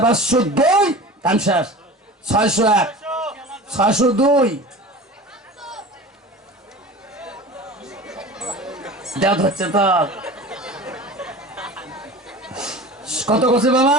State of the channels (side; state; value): both; normal; correlation 0.36